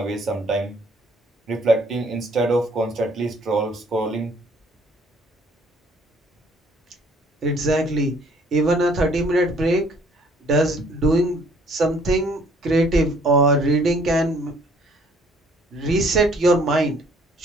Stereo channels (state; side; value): normal; both; correlation 0.60